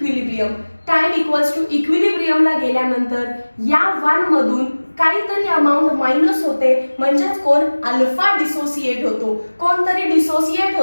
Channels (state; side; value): inverted; both; correlation -1.00